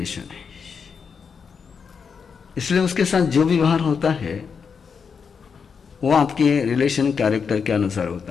है। इसलिए उसके साथ जो भी व्यवहार होता है वो आपके रिलेशन कैरेक्टर के अनुसार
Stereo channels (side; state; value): right; quieter; 6.1 dB